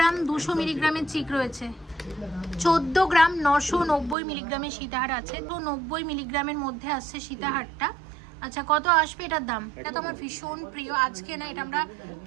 ২০০ মিলিগ্রামের চিক রয়েছে। ১৪ গ্রাম ৯৯০ মিলিগ্রামের সীতাহার আছে, তো ৯০ মিলিগ্রামের মধ্যে আসছে সীতাহারটা। আচ্ছা, কত আসবে এটার দাম? এটা তো আমার ভীষণ প্রিয়, আজকে না, এটা আমরা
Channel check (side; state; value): left; drops out; at 4.2 s